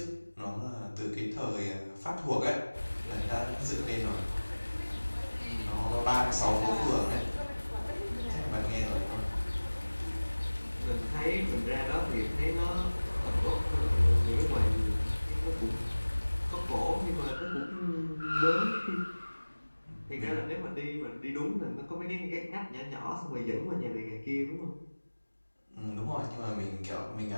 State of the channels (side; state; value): both; inverted; correlation -1.00